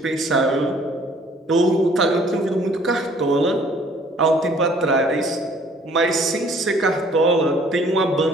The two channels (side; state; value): both; normal; correlation 0.57